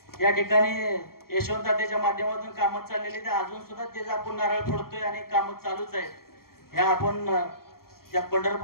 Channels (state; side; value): late; right; 0.93 ms